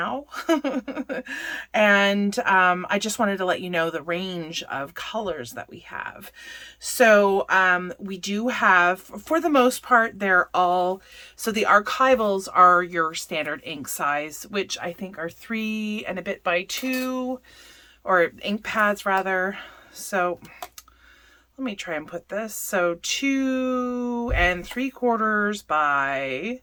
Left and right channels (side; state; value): both; identical; correlation 1.00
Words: And I just wanted to let you know the range of colors that we have. So we do have, for the most part, they're all, so the Archivals are your standard ink size, which I think are 3 and a bit by 2, or ink pads rather. So let me try and put this. So 2 3/4 by